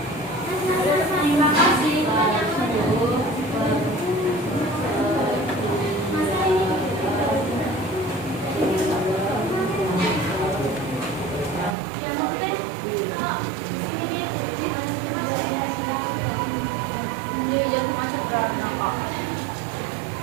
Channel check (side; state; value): left; drops out; at 11.8 s